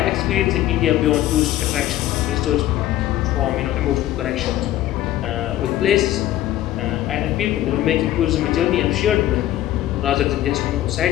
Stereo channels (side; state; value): right; quieter; 13.7 dB